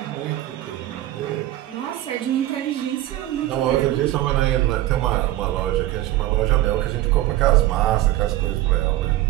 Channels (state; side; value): quieter; left; 15.2 dB